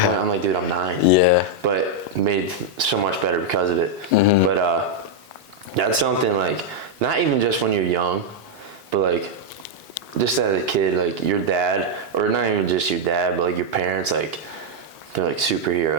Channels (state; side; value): normal; both; correlation -0.01